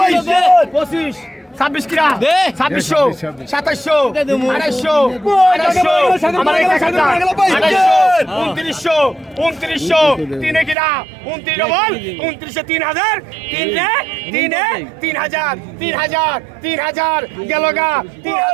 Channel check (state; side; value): drops out; left; at 10.8 s